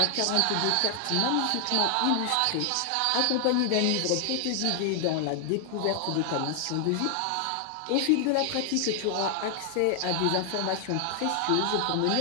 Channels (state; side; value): different; both; correlation 0.00